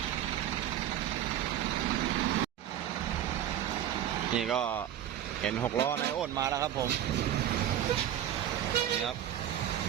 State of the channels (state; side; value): quieter; left; 11.1 dB